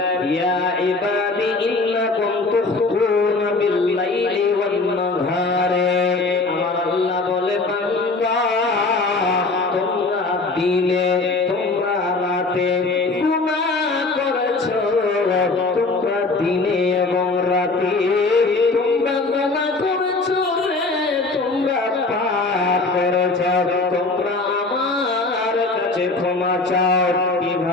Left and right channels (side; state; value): right; quieter; 3.5 dB